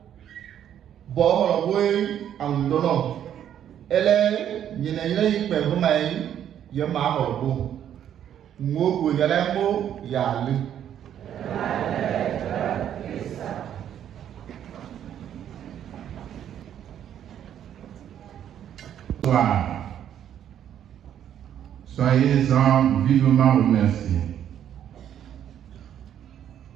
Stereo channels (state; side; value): quieter; left; 10.0 dB